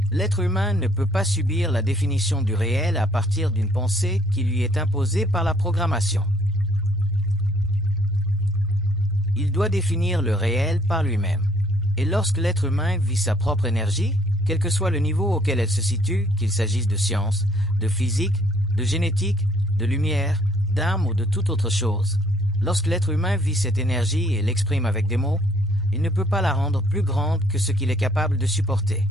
L'être humain ne peut pas subir la définition du réel à partir d'une pensée qui lui est imposée par la programmation. Il doit définir le réel par lui-même. Et lorsque l'être humain vit sa propre énergie, quel que soit le niveau auquel elle se situe, qu'il s'agisse de science, de physique, de génétique, de lumière, d'âme ou de toute autre chose, lorsque l'être humain vit cette énergie et l'exprime avec des mots, il ne peut pas la rendre plus grande que ce qu'il est capable de supporter.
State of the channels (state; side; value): normal; both; correlation 0.63